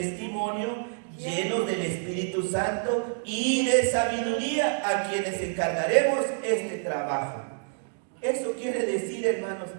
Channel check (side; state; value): left; silent; digital silence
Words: llenos del Espíritu Santo y de sabiduría, a quienes encargaremos este trabajo. Eso quiere decir, hermanos,